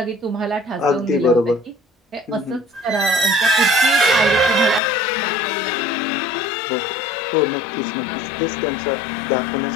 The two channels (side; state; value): right; drops out; at 4.8 s